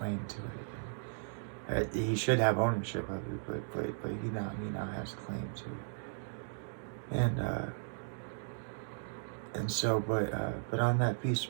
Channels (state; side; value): silent; left; digital silence